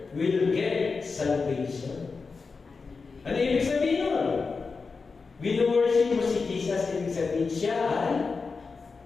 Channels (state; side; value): quieter; right; 4.6 dB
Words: will get salvation. Ano ibig sabihin nun? Wino-worship mo si Jesus, ibig sabihin siya ay